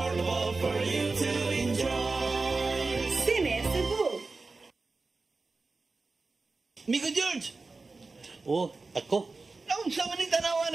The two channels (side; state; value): left; quieter; 3.8 dB